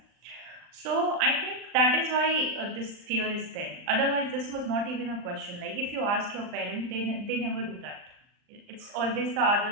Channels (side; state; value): left; late; 39 ms